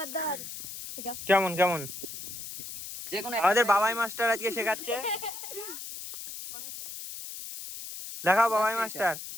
দা ঠিক আছে। কেমন কেমন? যে কোনো আমাদের বাবাই মাস্টার আজকে শেখাচ্ছে। দেখাও বাবাই মাস্টার।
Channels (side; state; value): left; noise; hiss, 9 dB below the sound